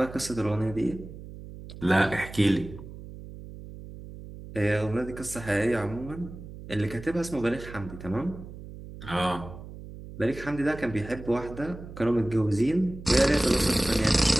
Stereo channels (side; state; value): right; noise; hum, 14 dB below the sound